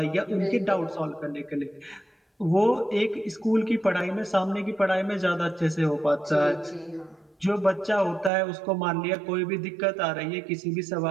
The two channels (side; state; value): left; drops out; at 8.3 s